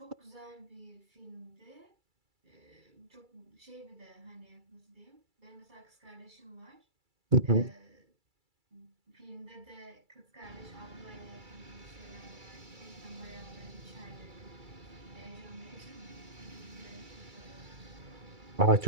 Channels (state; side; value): late; left; 2.3 ms